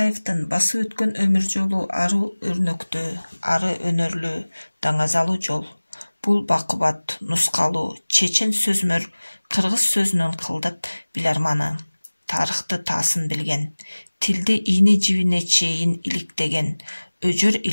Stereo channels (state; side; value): inverted; both; correlation -1.00